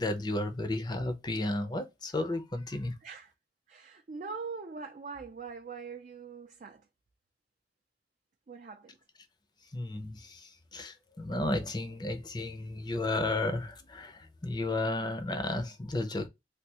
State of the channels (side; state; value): both; normal; correlation 0.62